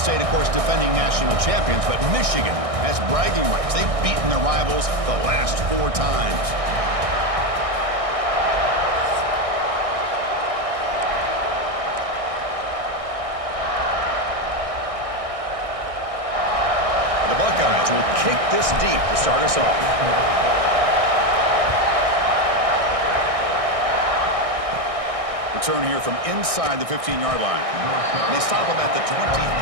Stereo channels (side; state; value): left; late; 1.6 ms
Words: of course, defending national champions, but Michigan has bragging rights. They've beaten their rivals the last 4 times. The Buckeyes will kick this deep to start us off. Return here from inside the 15-yard line. They stop him at the